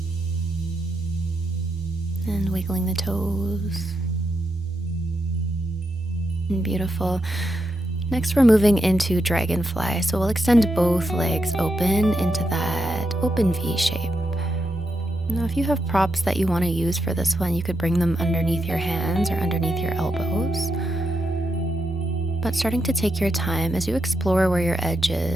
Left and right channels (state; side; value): normal; both; correlation 0.83